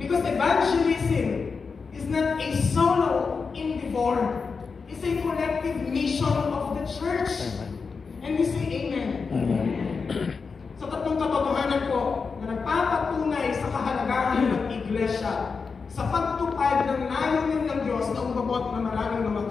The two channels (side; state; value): right; quieter; 5.0 dB